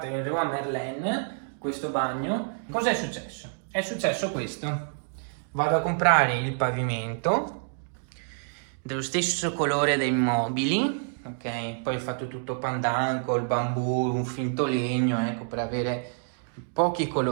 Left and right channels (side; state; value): left; silent; digital silence